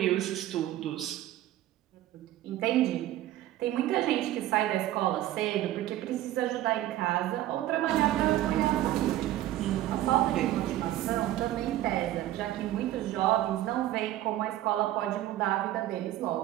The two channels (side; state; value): left; quieter; 14.2 dB